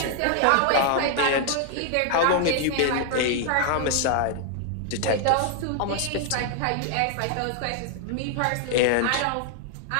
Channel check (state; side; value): different; both; correlation 0.00